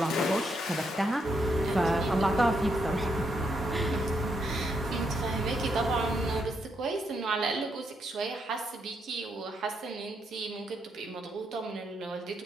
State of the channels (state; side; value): normal; both; correlation 0.78